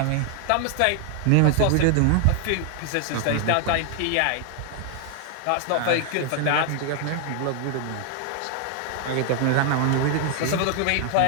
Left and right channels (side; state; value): both; different; correlation 0.00